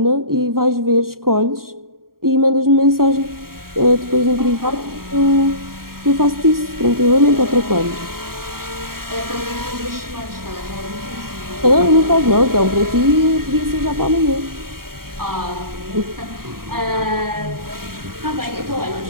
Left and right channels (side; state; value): left; late; 0.93 ms